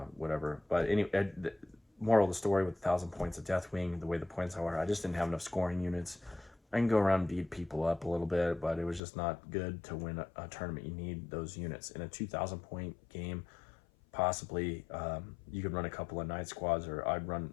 whatever. But anyway, moral of the story, with 1,000 points of Deathwing, the way the points are, I just didn't have enough scoring units. I can go around and beat people up a little bit, but it was just not good to win a tournament. You need those units. In a 2,000 point game, possibly you could run a couple of Night squads, or I'd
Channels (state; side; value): drops out; right; at 9.0 s